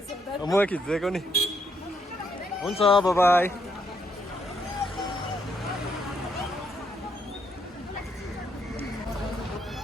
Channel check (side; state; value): both; normal; correlation 0.76